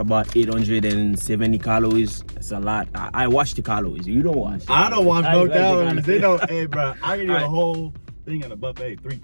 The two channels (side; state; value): both; inverted; correlation -1.00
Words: 870 calories. That's a lot. I watch the calories. You don't watch. I don't watch I no like the calories. They don't. Hey, bro, I can eat a Alright. whole thing in a buffet, 3